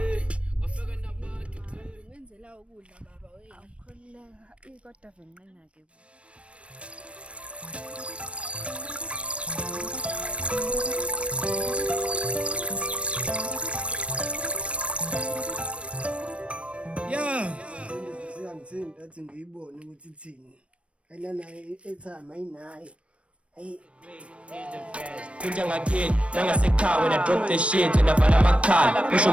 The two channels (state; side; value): late; left; 0.061 ms